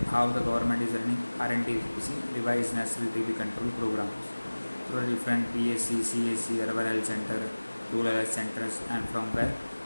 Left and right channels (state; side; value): inverted; both; correlation -1.00